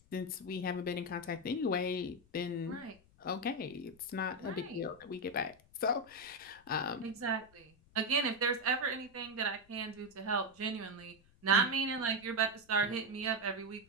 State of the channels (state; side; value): noise; left; rumble, 28 dB below the sound